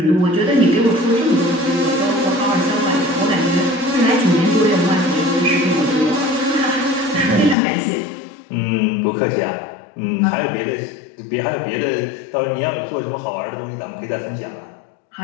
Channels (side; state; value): right; drops out; at 7.6 s